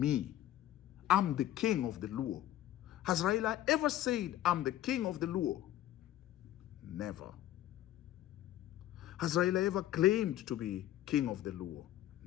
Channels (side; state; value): right; quieter; 13.3 dB